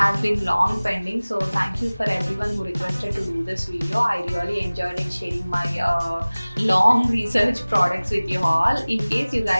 been long pending. So thank you for everyone who requested to do this video. I really enjoyed it sharing my long research products with you all. In case you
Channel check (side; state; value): both; inverted; correlation -1.00